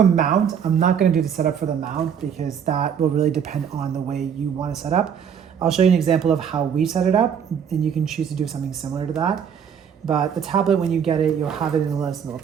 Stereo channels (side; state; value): left; quieter; 7.8 dB